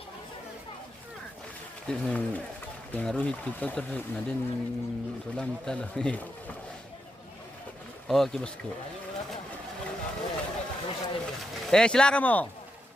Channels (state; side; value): normal; both; correlation 0.85